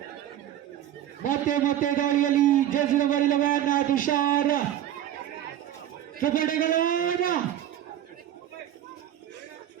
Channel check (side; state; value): left; quieter; 11.5 dB